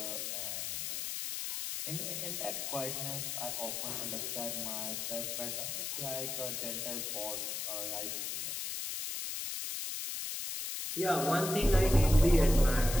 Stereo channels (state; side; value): noise; left; hiss, 4 dB below the sound